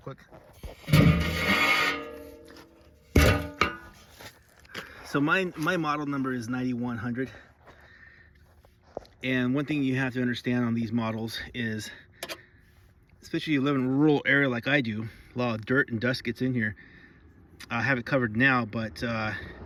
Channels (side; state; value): both; identical; correlation 1.00